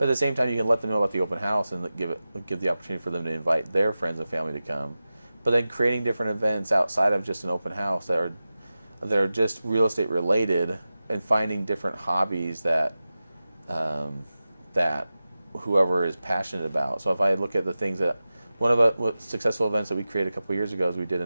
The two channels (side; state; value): both; inverted; correlation -0.94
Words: at the same time, you can let them know about the open house and give the opportunity for them to invite their friends and family to come. But then creating different events outside of just an open house that are just real estate related, and finding different hobbies that whoever is passionate about. So if I look at the things that one of the successful events that we created a couple of years ago is we did